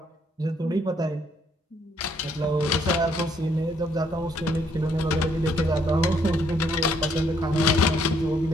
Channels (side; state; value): both; normal; correlation 0.69